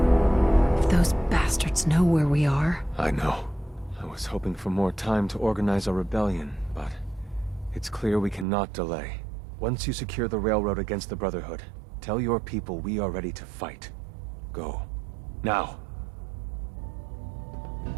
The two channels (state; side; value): drops out; left; at 8.5 s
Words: If those bastards know where we are... I know. I was hoping for more time to organize a rebellion, but it's clear we cannot delay. Once you secure the railroad against the Brotherhood, tell your people we are ready to fight. Go. Now.